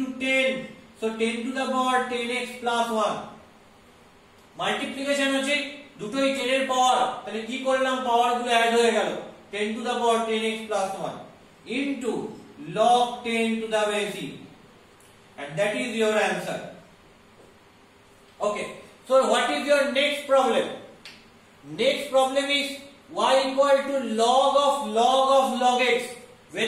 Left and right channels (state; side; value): identical; both; correlation 1.00